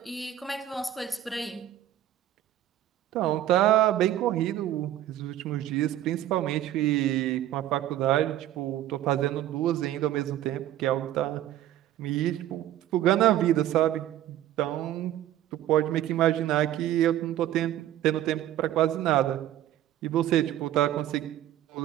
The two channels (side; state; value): left; quieter; 12.6 dB